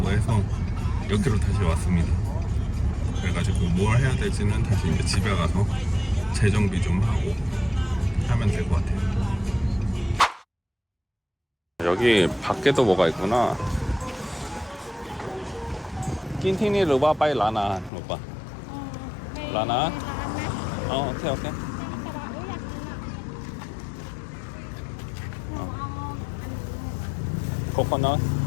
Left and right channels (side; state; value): right; drops out; at 17.9 s